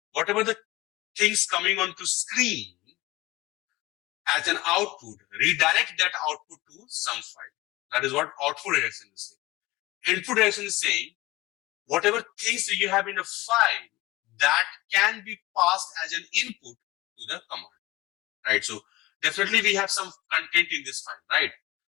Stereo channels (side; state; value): right; quieter; 19.6 dB